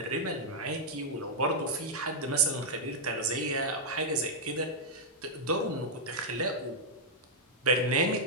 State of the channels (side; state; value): both; normal; correlation -0.06